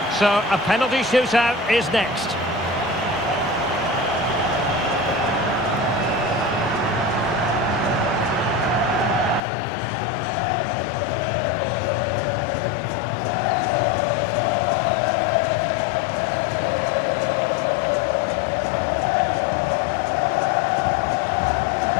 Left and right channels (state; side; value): drops out; right; at 9.4 s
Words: so a penalty shootout is next.